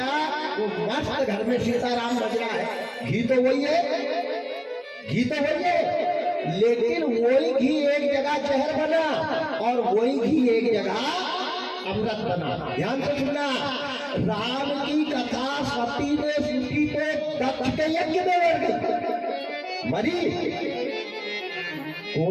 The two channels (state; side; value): identical; both; correlation 1.00